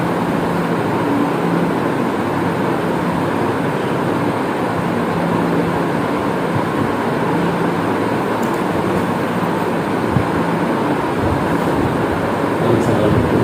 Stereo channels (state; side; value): identical; both; correlation 1.00